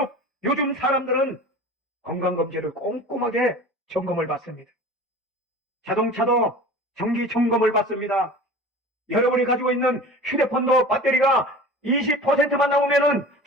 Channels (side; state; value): both; normal; correlation 0.38